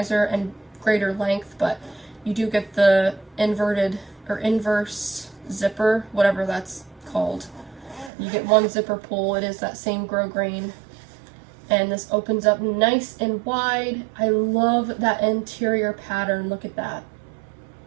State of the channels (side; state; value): left; drops out; at 8.1 s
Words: and greater length, but you do get the inverted or inverse zipper, whatever that's called. You get one zipper pull. It is that same grosgrain, and this opens up nice and wide. I love that interior pattern. Look at that.